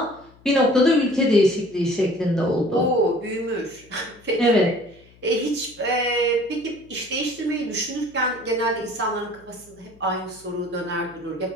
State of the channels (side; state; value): left; noise; hum, 27 dB below the sound